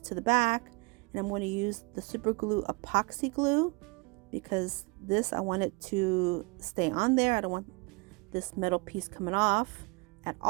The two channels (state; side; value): quieter; left; 28.7 dB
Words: the back, and I'm going to use the super glue epoxy glue because this, I want it to stay on there. I don't want this metal piece coming off at